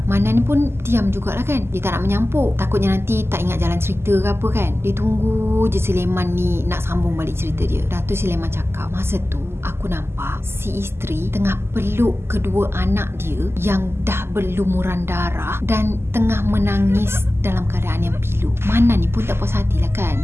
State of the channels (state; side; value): late; left; 0.12 ms